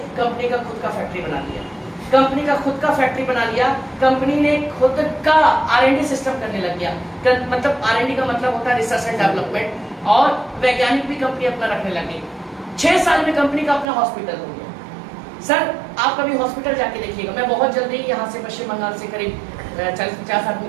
कंपनी का खुद का फैक्ट्री बना लिया। कंपनी का खुद का फैक्ट्री बना लिया, कंपनी ने खुद का R&D सिस्टम करने लग गया। मतलब R&D का मतलब होता है रिसर्च एंड डेवलपमेंट, और वैज्ञानिक भी कंपनी अपना रखने लगी। 6 साल में कंपनी का अपना हॉस्पिटल हो गया। सर आप कभी हॉस्पिटल जाके देखिएगा, मैं बहुत जल्दी यहाँ से पश्चिम बंगाल से करीब 40-50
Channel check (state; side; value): drops out; left; at 13.9 s